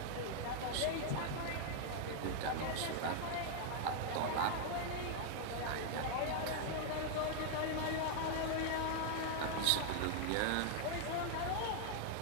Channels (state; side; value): different; both; correlation 0.00